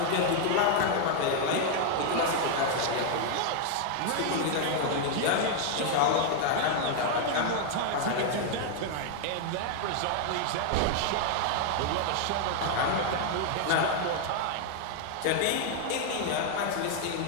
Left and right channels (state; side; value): different; both; correlation 0.00